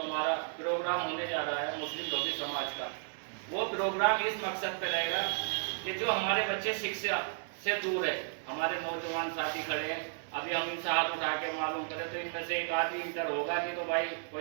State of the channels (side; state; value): left; silent; digital silence